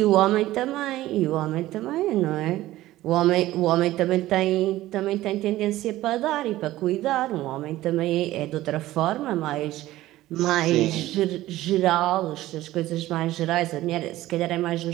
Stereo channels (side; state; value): left; quieter; 15.9 dB